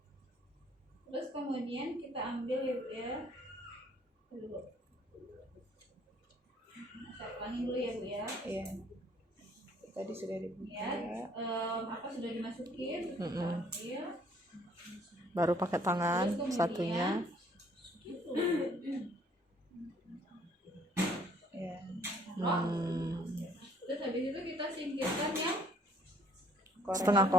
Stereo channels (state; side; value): normal; both; correlation 0.61